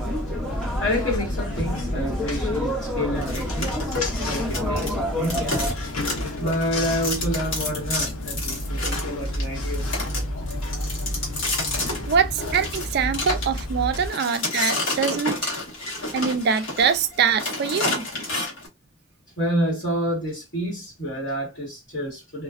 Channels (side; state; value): both; normal; correlation 0.22